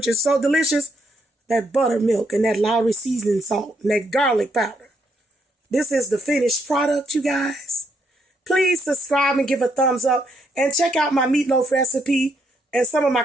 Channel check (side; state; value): both; normal; correlation 0.75